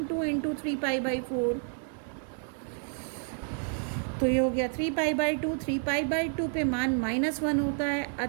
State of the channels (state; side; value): silent; left; 58 dB below the other